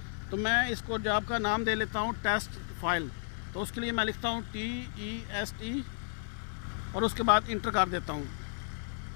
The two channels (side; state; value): right; silent; 56 dB below the other